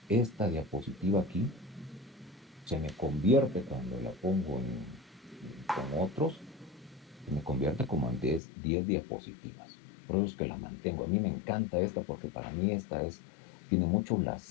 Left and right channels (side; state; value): right; drops out; at 8.4 s